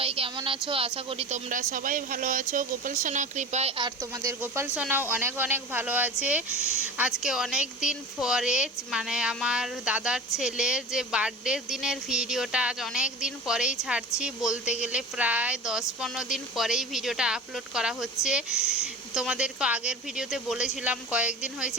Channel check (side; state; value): both; normal; correlation 0.34